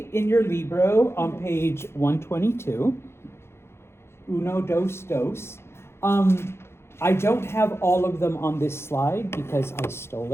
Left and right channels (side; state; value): right; late; 0.12 ms